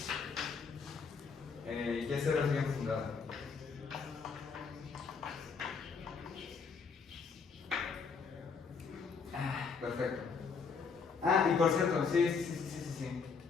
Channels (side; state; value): right; quieter; 5.4 dB